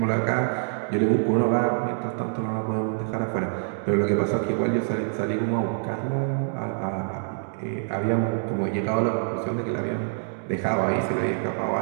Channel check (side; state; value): left; silent; digital silence